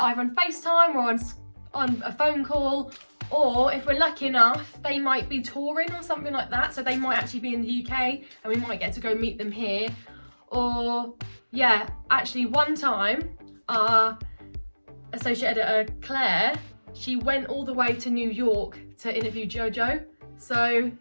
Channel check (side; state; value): both; inverted; correlation -1.00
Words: on FaceTime or on a phone call, or if we're lucky enough, they might be touring or something like that. So they might actually be in the UK and we might get to go meet them here. Or yeah, actually one time our associate editor, Claire, she went all the way to New York to interview Jojo. So